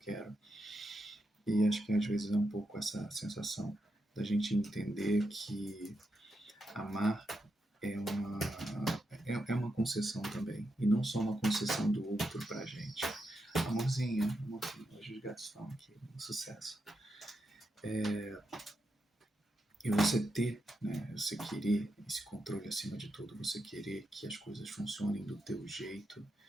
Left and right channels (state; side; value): normal; both; correlation 0.85